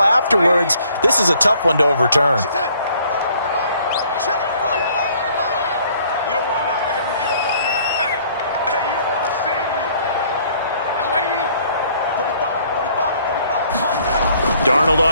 afterwards. This is a tough one to overturn. Darnold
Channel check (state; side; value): inverted; both; correlation -0.60